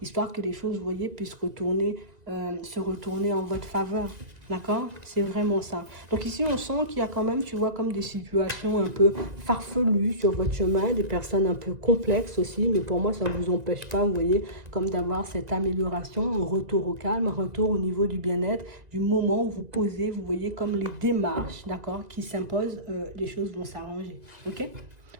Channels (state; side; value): late; left; 2.0 ms